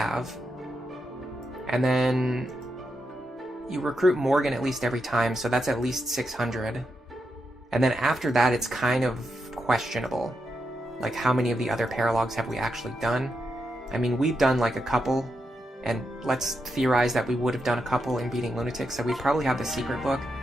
And then you recruit Morgan at least every time, so that's at least 600. And then after that, it's kind of questionable. Like, how many of the other Paralogues have we actually done? I mean, we've done like a couple, and let's theorize that we would have done a couple in beating Lunatic, so we probably have the secret book.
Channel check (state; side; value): normal; both; correlation 0.85